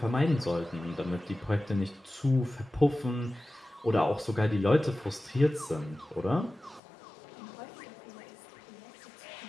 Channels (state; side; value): drops out; right; at 6.8 s